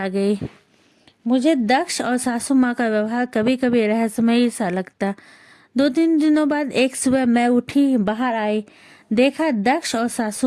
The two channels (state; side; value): identical; both; correlation 1.00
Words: गई। मुझे दक्ष और सासू माँ का व्यवहार कभी कभी रहस्यमयी सा लगता। 2-3 दिनों बाद एक सुबह मैं उठी, बाहर आई, देखा दक्ष और